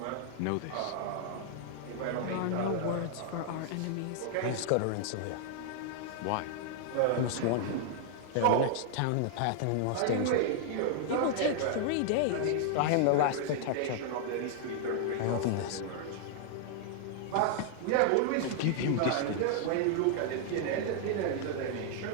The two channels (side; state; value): both; different; correlation -0.01